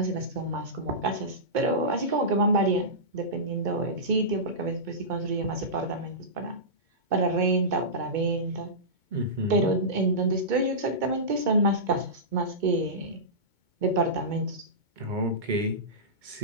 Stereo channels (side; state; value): left; late; 2.2 ms